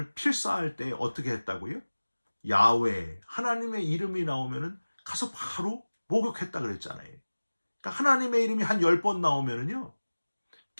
필사할 때 어떻게 했다고요? 야훼, 하나님의 이름이 나오면은 가서 바로 목욕했다 그랬잖아요. 그러니까 하나님의 이름이 한 10번 나오면은요,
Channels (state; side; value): inverted; both; correlation -1.00